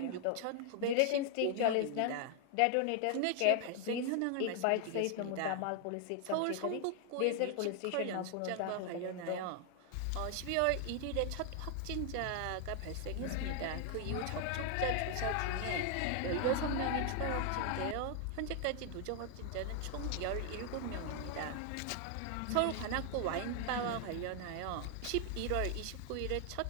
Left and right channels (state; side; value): different; both; correlation 0.00